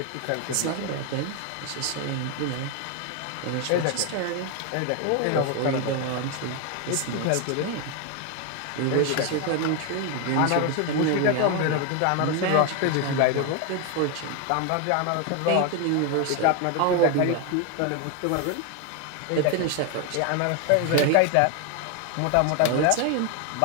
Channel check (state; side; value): different; both; correlation 0.01